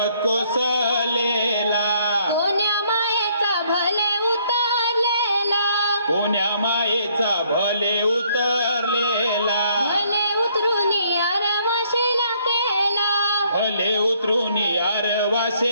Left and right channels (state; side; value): inverted; both; correlation -0.66